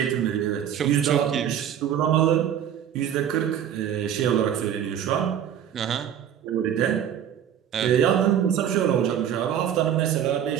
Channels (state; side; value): quieter; left; 9.6 dB